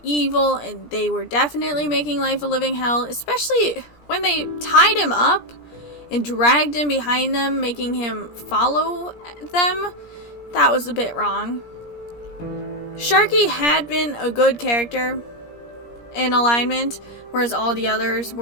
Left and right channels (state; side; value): late; right; 17 ms